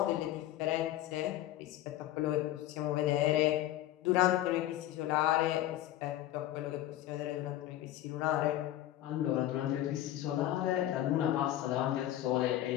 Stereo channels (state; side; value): quieter; right; 13.7 dB